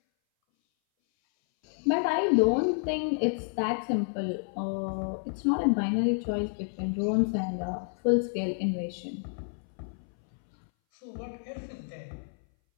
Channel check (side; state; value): right; silent; 58 dB below the other